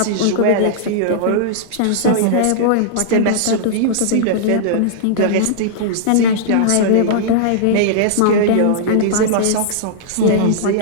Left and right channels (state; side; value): different; both; correlation -0.02